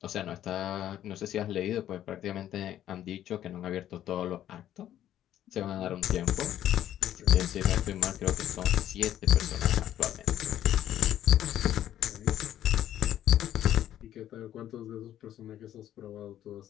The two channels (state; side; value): quieter; right; 11.7 dB